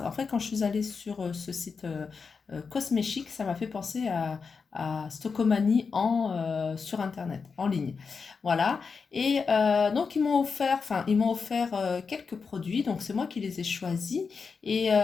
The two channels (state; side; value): quieter; right; 5.2 dB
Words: En fait, quand je suis allée sur ce site Cosmechic, ça m'a fait penser à Stockomanie sur Internet, en ligne. Voilà. Et donc, ils m'ont offert quelques produits. Donc, c'est moi qui les ai choisis.